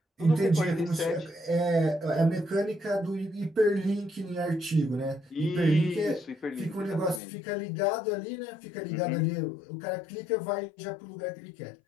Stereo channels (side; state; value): right; drops out; at 7.2 s